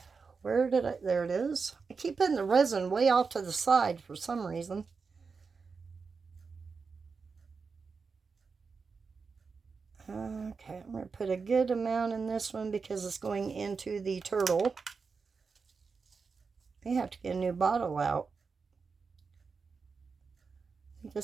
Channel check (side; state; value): left; quieter; 5.0 dB